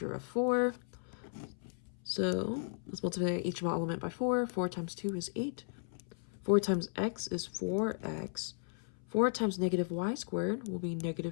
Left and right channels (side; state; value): right; silent; 54 dB below the other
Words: of 4. So let's multiply each element by 4. 4 times 2 is 8. 4 times x is 4x. 4 times negative y squared will be